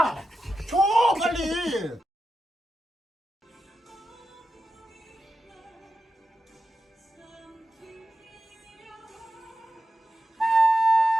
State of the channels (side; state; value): both; normal; correlation 0.90